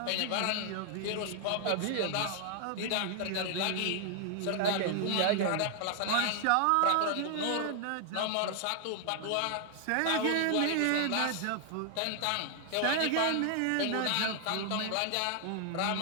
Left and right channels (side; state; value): both; different; correlation 0.00